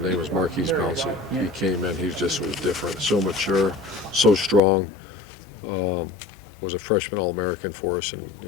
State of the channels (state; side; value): drops out; right; at 4.6 s